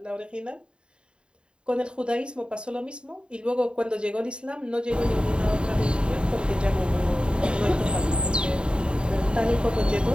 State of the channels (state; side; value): late; left; 0.052 ms